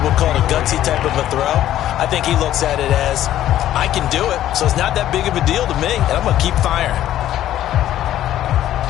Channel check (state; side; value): quieter; right; 12.6 dB